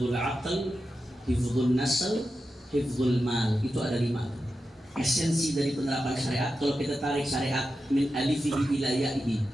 aql, hifdzun nasl, hifdzul mal. Itu ada 5. Esensi dari penerapan syariat, kalau kita tarik syariat min alifihi ila ya'ihi,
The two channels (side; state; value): both; normal; correlation 0.90